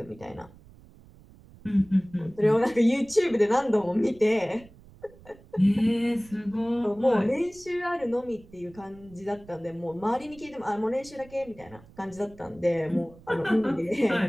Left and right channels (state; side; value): noise; right; rumble, 23 dB below the sound